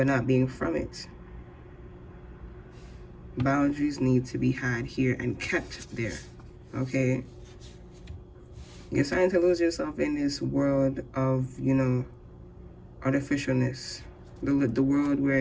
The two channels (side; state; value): both; identical; correlation 1.00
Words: not being from it. Boundaries need to be had here and kept there, okay? You're starting to lose yourself in this world of, artificialness. The world